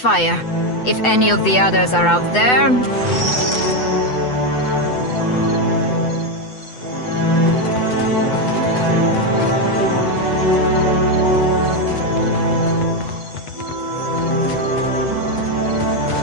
If any of the others are out there...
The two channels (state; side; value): late; right; 8.0 ms